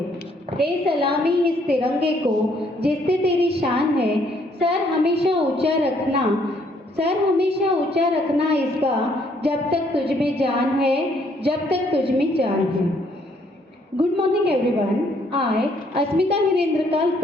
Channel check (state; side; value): normal; both; correlation 0.67